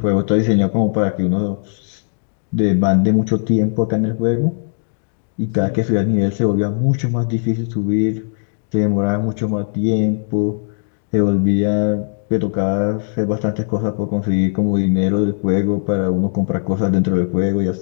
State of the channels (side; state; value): right; silent; digital silence